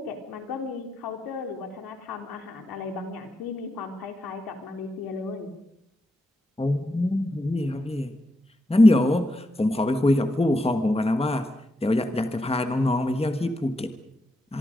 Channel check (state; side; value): normal; both; correlation 0.84